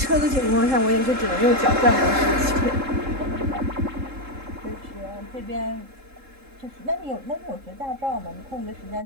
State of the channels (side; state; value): left; late; 3.7 ms